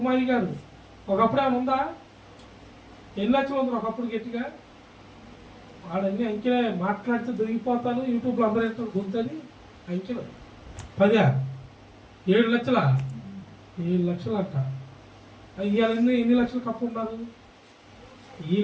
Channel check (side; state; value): both; identical; correlation 1.00